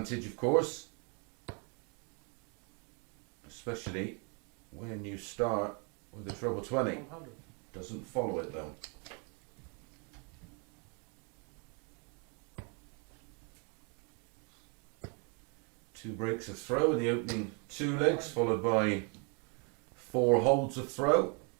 of course, especially when you start with a treble 20. 100. Doesn't follow it though. Two breaks of throw in the opening two legs, followed by four holds of throw.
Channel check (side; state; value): left; quieter; 35.9 dB